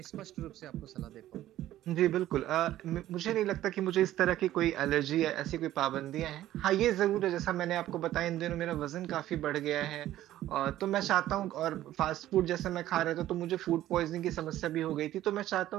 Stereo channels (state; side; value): quieter; left; 13.8 dB